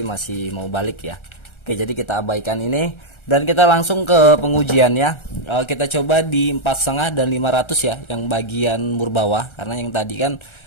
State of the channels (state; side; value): late; right; 1.3 ms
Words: masih mau balik ya. Oke, jadi kita abaikan ini dan kita langsung ke pengujian ya. Kita coba di 4,5 dan 500 ya, yang bagian mur bawah, karena yang tadi kan